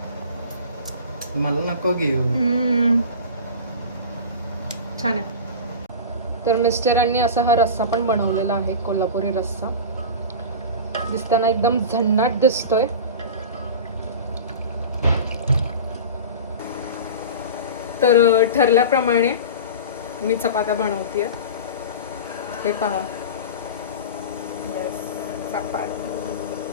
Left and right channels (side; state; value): both; inverted; correlation -0.31